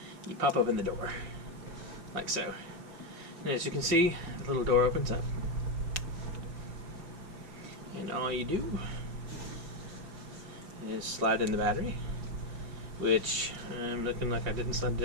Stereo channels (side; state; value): left; late; 5.4 ms